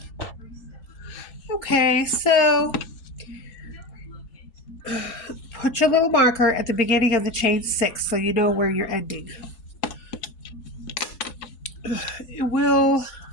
Okay, so put your little marker at the beginning of the chain 6 so you know where you're ending. It will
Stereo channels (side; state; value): right; late; 4.7 ms